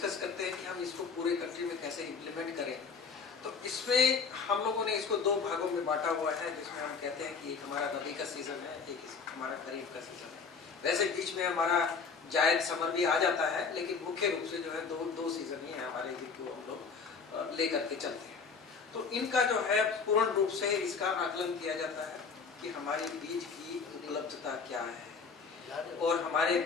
करते हैं कि हम इसको पूरे कंट्री में कैसे इम्प्लीमेंट करें, तो इसमें हम लोगों ने इसको दो भागों में बांटा हुआ है, जिसमें हम कहते हैं कि एक हमारा रबी का सीजन है, एक हमारा खरीफ का सीजन है। वैसे बीच में हमारा जायद समर भी आ जाता है, लेकिन मुख्य रूप से जो है दो सीजन ही है हमारे, जिनको हम लोग लेकर के चलते हैं। तो इनका जो है पूर्ण रूप से इसका आकलन किया जाता है कि हमारी बीज की उपलब्धता क्या है, और हमारे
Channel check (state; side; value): quieter; right; 5.3 dB